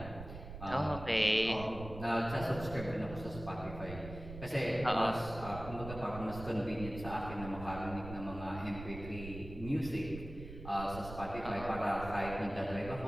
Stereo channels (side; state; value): right; noise; rumble, 11 dB below the sound